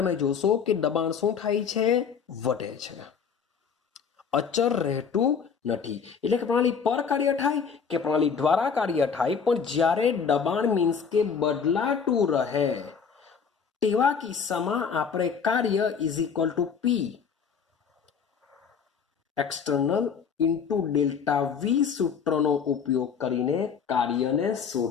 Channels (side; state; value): right; quieter; 6.4 dB